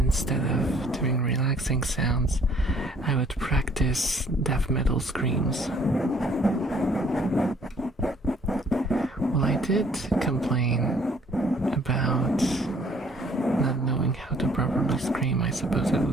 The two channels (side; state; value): both; normal; correlation 0.60